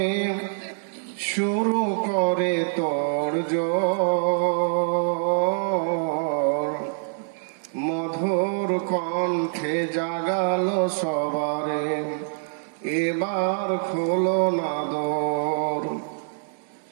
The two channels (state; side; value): silent; left; 62 dB below the other